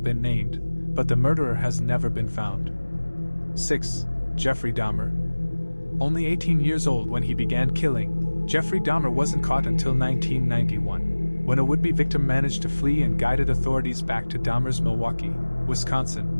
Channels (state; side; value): inverted; both; correlation -1.00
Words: been named, but the murderer has never been found. 6. Jeffrey Dahmer. Only 18 years old when he began killing, Jeffrey Dahmer wasn't caught until 1991, when a would-be victim managed to flee and guided authorities back to Dahmer's Milwaukee,